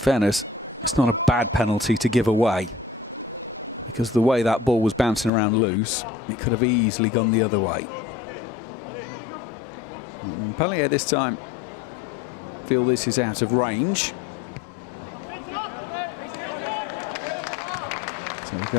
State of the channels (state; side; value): drops out; right; at 5.3 s